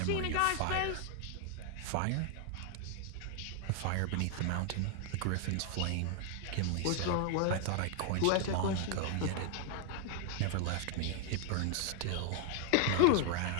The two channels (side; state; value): both; different; correlation 0.00